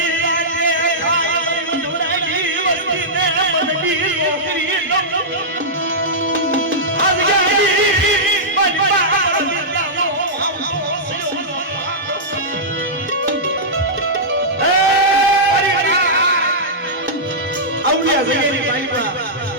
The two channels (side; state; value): both; normal; correlation -0.12